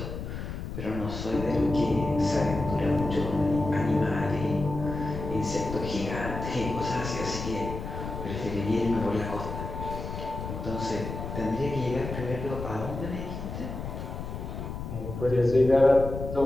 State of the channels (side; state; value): left; noise; rumble, 7 dB below the sound